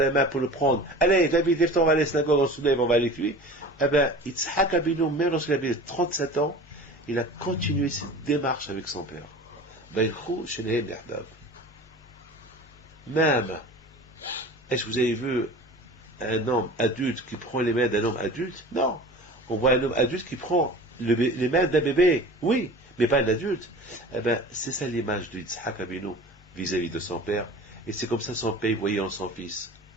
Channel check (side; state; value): both; normal; correlation 0.39